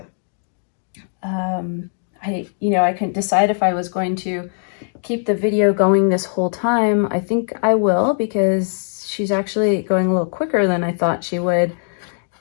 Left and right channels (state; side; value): silent; right; digital silence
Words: I couldn't decide if I was going to keep the video going this whole time. I think I will, because she's actually going a little quicker than I thought she would.